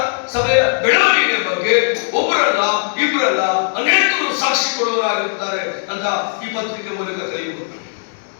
ಸಭೆಯ ಬೆಳವಣಿಗೆ ಬಗ್ಗೆ ಒಬ್ಬರಲ್ಲ ಇಬ್ಬರಲ್ಲ ಅನೇಕರು ಸಾಕ್ಷಿ ಕೊಡುವವರಾಗಿರುತ್ತಾರೆ ಅಂತ ಈ ಪತ್ರಿಕೆ ಮೂಲಕ ಕಲಿಯಬಹುದು.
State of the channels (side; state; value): right; silent; 63 dB below the other